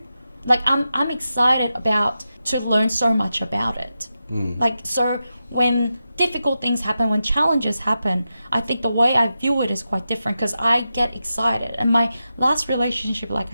Like, I'm excited to learn so much about it. Like, so when difficult things happen, when challenges happen, I think the way I view it is quite different, because I get excited. And my last relationship, like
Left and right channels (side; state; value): both; inverted; correlation -0.90